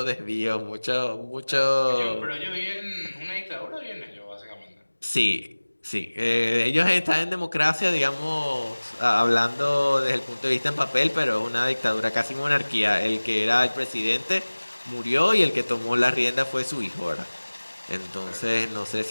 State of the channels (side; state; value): both; inverted; correlation -1.00